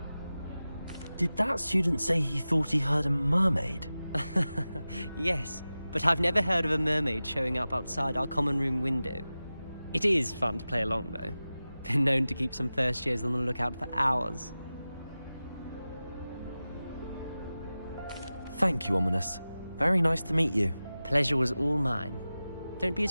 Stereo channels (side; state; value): both; inverted; correlation -0.95